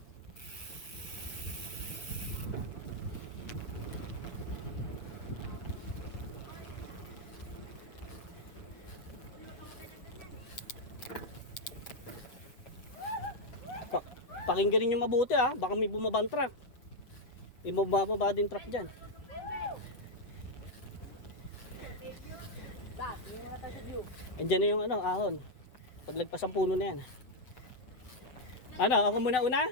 Pakinggan niyo mabuti ah, baka may bumabang truck. May bumababa din truck dyan. Ba, yung mga tayo sa view. Andiyan na yung ano, ahon. Paglagpas ang puno na yan. Ano, ako muna una?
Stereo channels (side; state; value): right; late; 7.9 ms